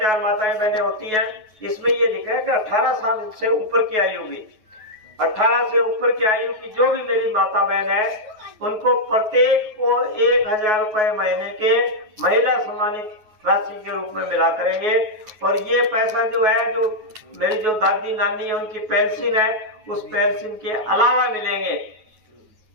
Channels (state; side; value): late; left; 9.3 ms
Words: माताएं बहनें होती हैं। इसमें ये लिखा है कि 18 साल से ऊपर की आयु की, 18 से ऊपर की आयु की जो भी मेरी माता बहन है उनको प्रत्येक को 1000 रुपए महीने के महिला सम्मानित राशि के रूप में मिला करेंगे। और ये पैसा जो है, जो मेरी जो दादी नानी है उनकी पेंशन है, उस पेंशन के अलावा मिलेंगे।